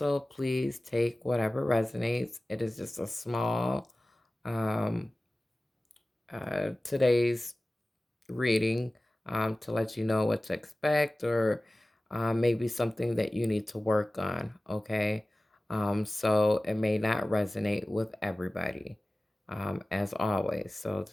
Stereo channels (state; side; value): normal; both; correlation 0.97